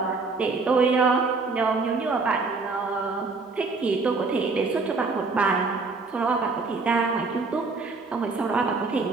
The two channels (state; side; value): quieter; left; 4.0 dB